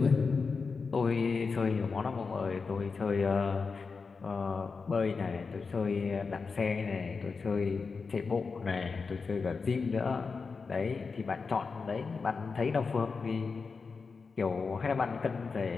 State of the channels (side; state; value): right; quieter; 4.8 dB